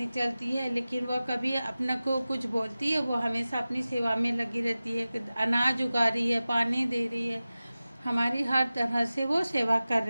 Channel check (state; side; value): inverted; both; correlation -0.96